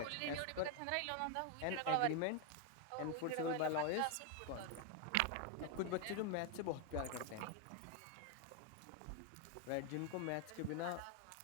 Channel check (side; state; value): both; different; correlation 0.01